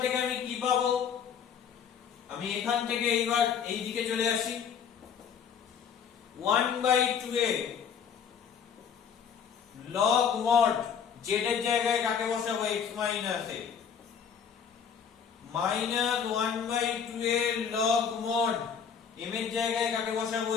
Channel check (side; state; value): right; quieter; 7.4 dB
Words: থেকে আমি কি পাবো? আমি এখান থেকে এইবার এই দিকে চলে আসি, 1/2a log mod z এর জায়গায় কাকে বসাবো? x minus a minus 1/2a log mod m এর জায়গায় কাকে বসাবো?